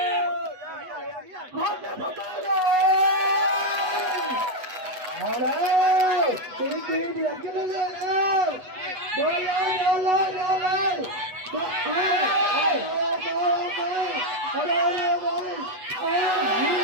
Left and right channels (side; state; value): left; late; 8.1 ms